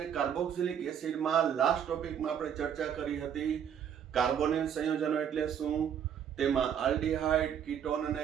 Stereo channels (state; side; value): quieter; left; 8.6 dB